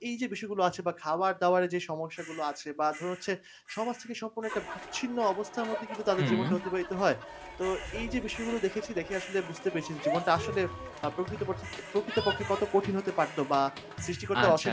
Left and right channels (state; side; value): identical; both; correlation 1.00